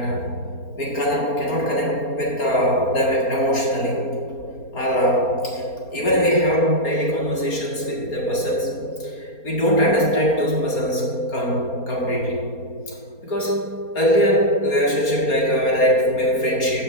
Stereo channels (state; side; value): late; right; 4.3 ms